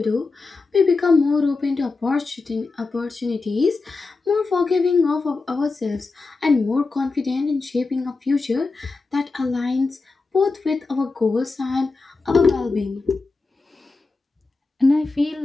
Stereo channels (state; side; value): quieter; right; 3.9 dB